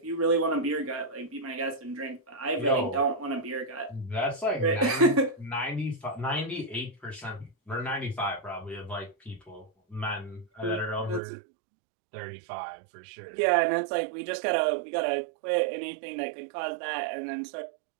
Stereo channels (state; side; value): drops out; left; at 11.2 s